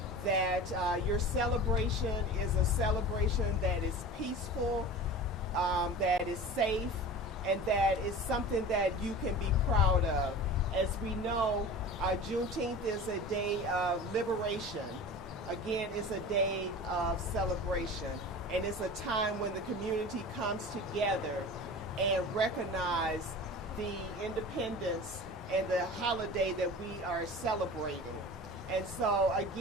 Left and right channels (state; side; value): normal; both; correlation 0.36